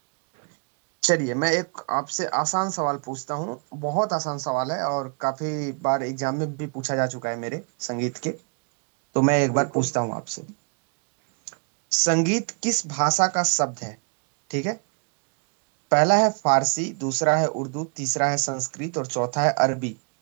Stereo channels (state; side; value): quieter; left; 37.6 dB